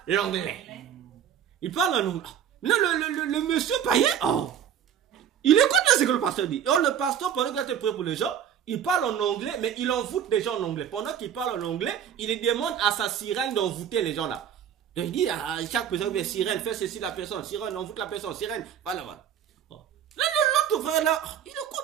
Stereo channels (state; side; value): quieter; left; 9.1 dB